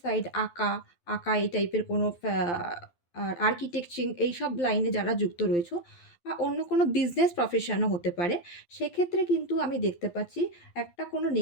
সাইড আঁকা এই টাইপের কোনো আর্কিটেকচিং এইসব লাইনে যারা যুক্ত রয়েছো বা অন্য কোনো বিজনেস প্রফেশনও হতে পারে। সেক্ষেত্রে কিন্তু আমি দেখতে পাচ্ছি একটা কোনো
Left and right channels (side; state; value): right; late; 12 ms